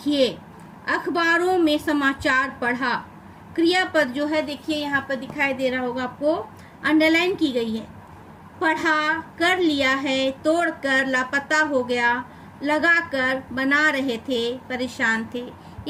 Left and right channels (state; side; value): identical; both; correlation 1.00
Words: अखबारों में समाचार पढ़ा। क्रियापद जो है देखिए यहाँ पर दिखाई दे रहा होगा आपको, अंडरलाइन की गई है। पढ़ा, कर लिया है, तोड़कर, लापता हो गया, लगाकर, बना रहे थे, परेशान थे,